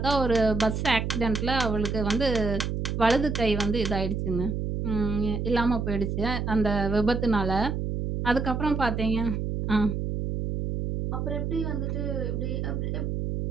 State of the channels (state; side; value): noise; right; hum, 2 dB below the sound